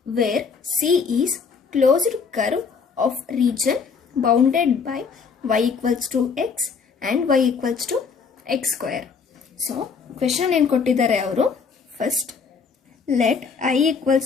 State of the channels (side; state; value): right; quieter; 5.6 dB